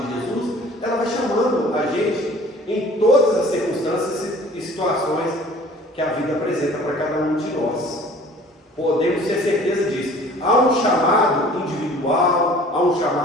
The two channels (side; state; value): both; normal; correlation 0.49